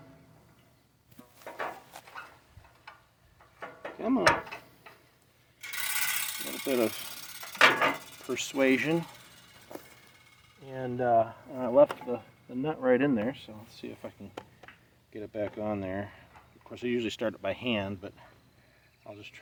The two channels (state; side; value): identical; both; correlation 1.00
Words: Come on. A little bit of persuasion. And I left the nut right in there, so let's see if I can get it back on there. Of course, I usually start it by hand, but I'll just